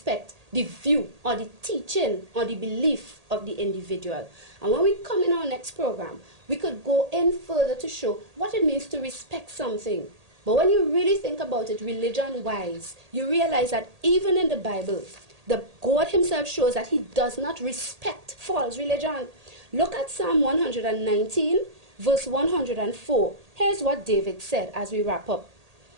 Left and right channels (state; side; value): late; left; 1.8 ms